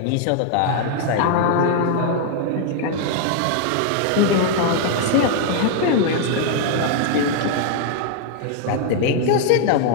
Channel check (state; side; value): different; both; correlation 0.00